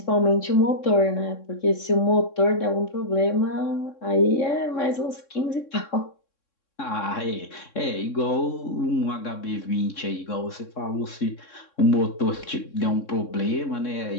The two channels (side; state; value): right; late; 3.6 ms